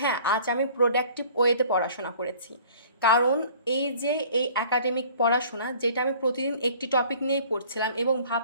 আজ আমি প্রোডাক্টিভ ওয়েতে পড়াশোনা করেছি। কারণ এই যে এই একাডেমিক পড়াশোনা যেটা আমি প্রতিদিন একটি টপিক নিয়েই পড়ছিলাম এবং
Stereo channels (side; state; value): both; inverted; correlation -0.51